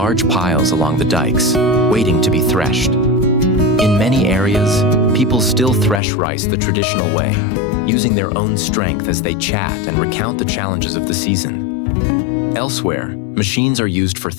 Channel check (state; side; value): drops out; right; at 6.0 s